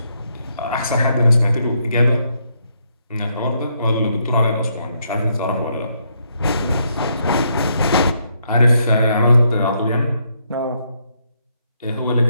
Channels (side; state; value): both; inverted; correlation -0.75